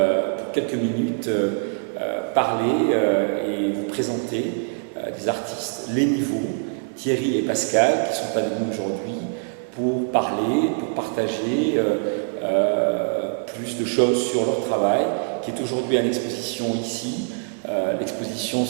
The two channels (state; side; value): silent; left; digital silence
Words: pour quelques minutes parler et vous présenter des artistes, les niveaux, Thierry et Pascal, qui sont avec nous aujourd'hui pour parler, pour partager plus de choses sur leur travail, qui est aujourd'hui en exposition ici. L'exposition